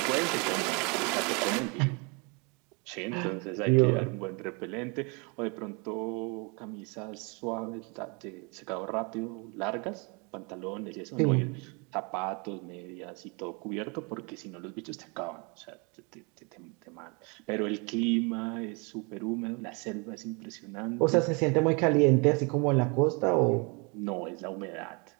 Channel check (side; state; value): left; quieter; 31.8 dB